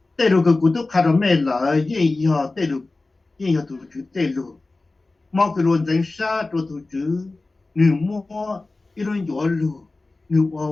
tê lu cái cụ túc khai rồi mẹ là gì họ tê lu tụ chữ tê lu mà cái luôn danh sa tụ chữ nữ mua iron gió lu nữ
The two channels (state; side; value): quieter; right; 3.3 dB